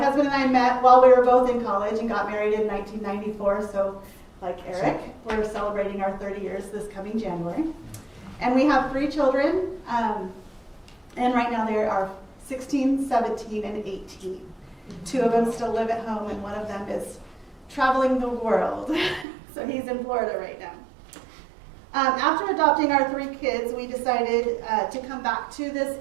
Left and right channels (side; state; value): left; drops out; at 19.2 s